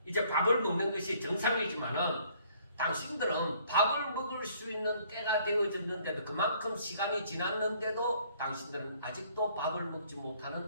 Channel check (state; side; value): inverted; both; correlation -0.61